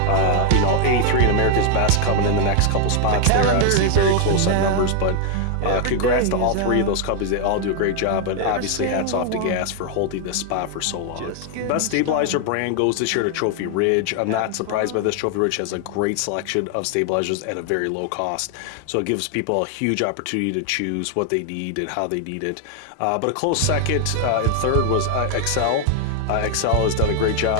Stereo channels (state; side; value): different; both; correlation 0.00